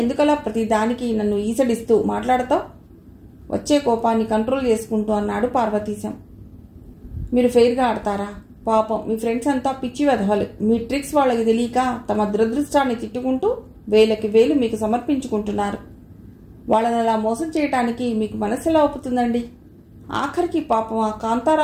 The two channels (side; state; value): both; identical; correlation 1.00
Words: ప్రతి దానికి నన్ను ఈసడిస్తూ మాట్లాడతావు? వచ్చే కోపాన్ని కంట్రోల్ చేసుకుంటూ అన్నాడు పార్వతీశం. మీరు ఫెయిర్గా ఆడతారా? పాపం మీ ఫ్రెండ్స్ అంతా పిచ్చి వెధవలు. మీ ట్రిక్స్ వాళ్ళకి తెలియక తమ దురదృష్టాన్ని తిట్టుకుంటూ వేలకి వేలు మీకు సమర్పించుకుంటున్నారు. వాళ్ళని అలా మోసం చేయటానికి మీకు మనసు ఎలా ఒప్పుతుందండి? ఆఖరికి పాపం ఆ